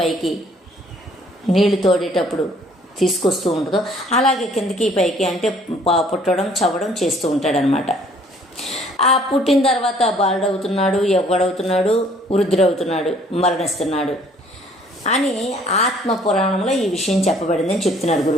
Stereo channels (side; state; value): both; normal; correlation 0.59